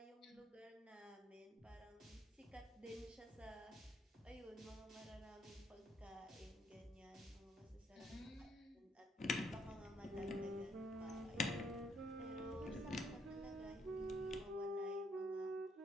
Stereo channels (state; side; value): normal; both; correlation 0.71